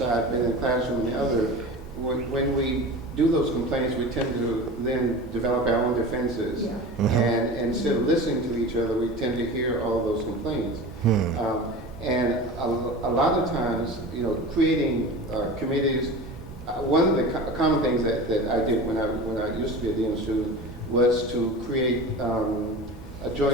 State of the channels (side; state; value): both; normal; correlation 0.32